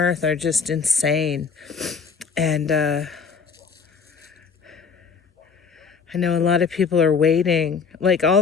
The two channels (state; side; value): quieter; right; 5.7 dB